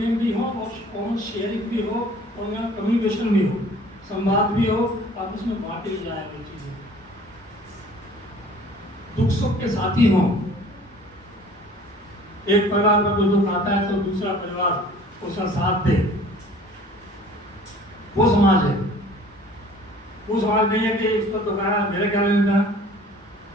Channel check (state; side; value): normal; both; correlation 0.50